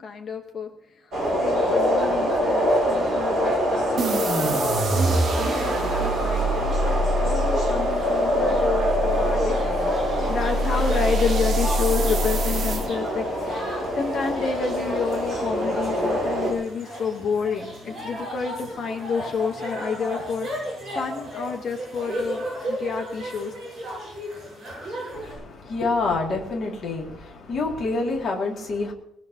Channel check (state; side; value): normal; both; correlation 0.71